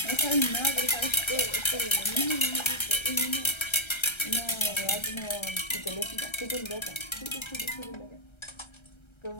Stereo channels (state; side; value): late; right; 1.3 ms